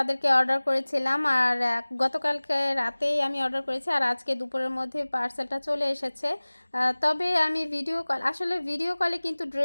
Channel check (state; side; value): inverted; both; correlation -1.00